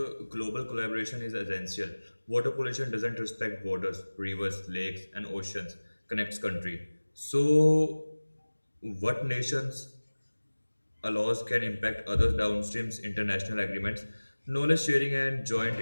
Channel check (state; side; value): inverted; both; correlation -1.00